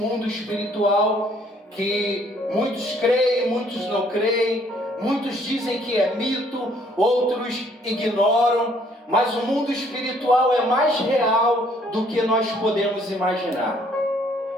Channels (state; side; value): normal; both; correlation 0.63